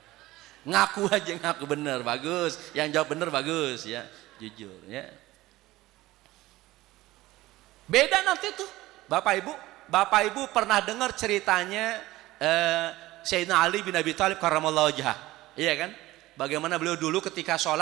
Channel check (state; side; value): quieter; left; 17.6 dB